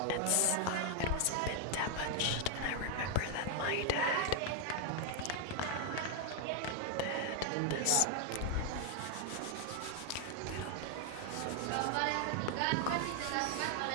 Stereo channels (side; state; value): both; different; correlation 0.00